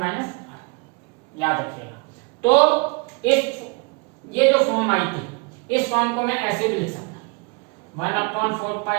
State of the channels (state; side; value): quieter; left; 31.1 dB